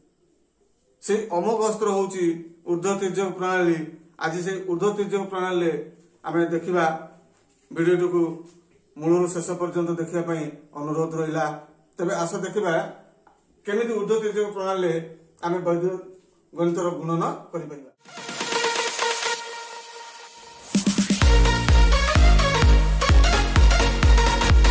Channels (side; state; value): both; identical; correlation 1.00